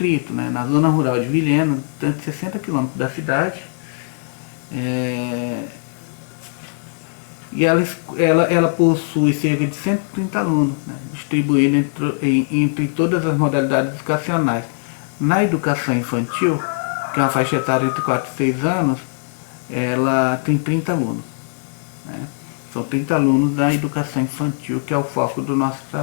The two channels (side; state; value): right; silent; 59 dB below the other